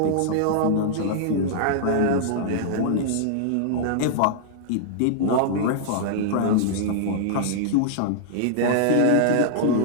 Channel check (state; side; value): different; both; correlation -0.01